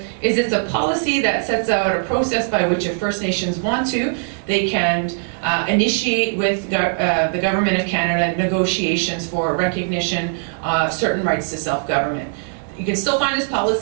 is it's a policy that sets out a process by which if First Nations want to, they can initiate with the Government of Canada negotiations for recognition of certain rights to self-government. You can still find this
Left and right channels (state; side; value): silent; left; 66 dB below the other